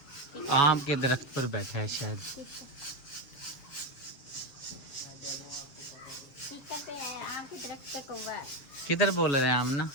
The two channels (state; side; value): late; right; 7.5 ms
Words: आम के दरख्त पर बैठा है शायद। किधर बोल रहे हैं आमना?